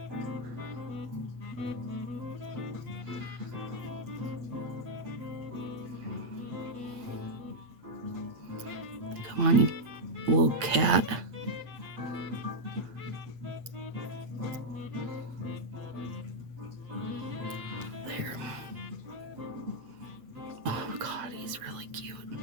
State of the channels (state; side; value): late; left; 8.7 ms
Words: Come on, you little cat. There. Oh God, he's really cute.